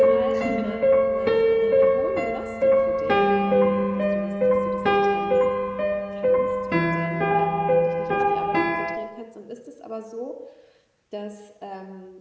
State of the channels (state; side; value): identical; both; correlation 1.00